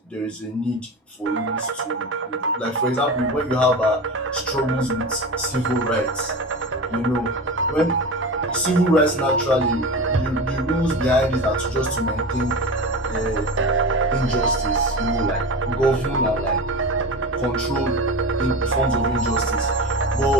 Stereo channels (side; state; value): both; normal; correlation 0.27